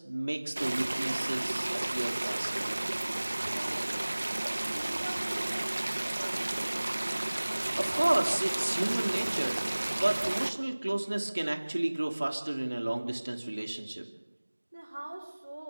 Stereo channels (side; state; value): both; inverted; correlation -1.00